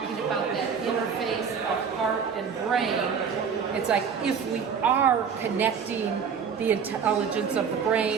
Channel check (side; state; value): left; quieter; 6.6 dB